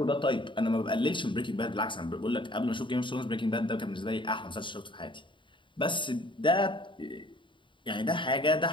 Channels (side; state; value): right; late; 0.24 ms